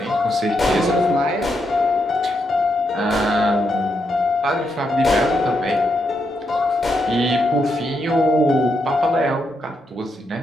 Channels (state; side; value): normal; both; correlation 0.81